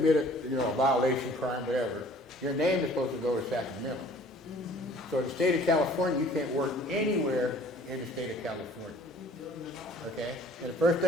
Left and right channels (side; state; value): both; normal; correlation 0.52